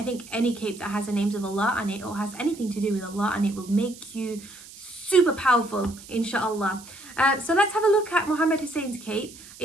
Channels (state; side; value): noise; right; hiss, 18 dB below the sound